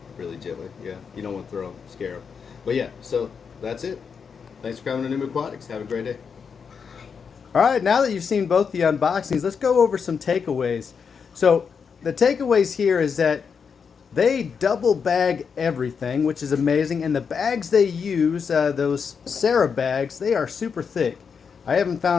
Really gently, yeah, you don't want to throw them, scare them. But yeah, so that's it. Thanks for coming to New Aquatics. Have a great day. Alright, now that you've seen both the unboxings, let's go over some takeaways. So the takeaways here is that they double bag everything, which is amazing, and the bags they use, those Sarah bags, they are super thick. I haven't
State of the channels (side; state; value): right; quieter; 6.2 dB